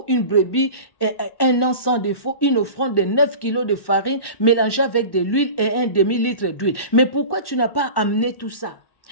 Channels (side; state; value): right; late; 1.1 ms